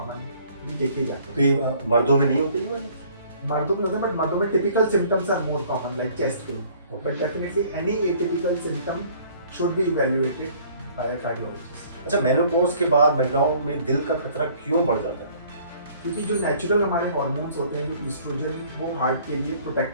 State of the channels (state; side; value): inverted; both; correlation -0.56